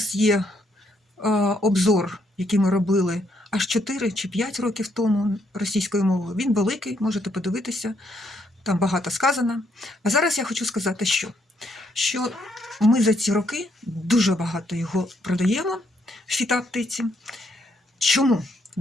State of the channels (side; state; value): both; normal; correlation 0.73